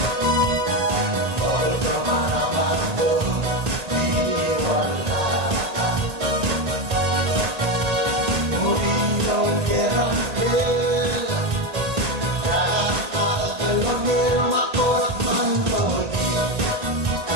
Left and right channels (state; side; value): late; left; 1.8 ms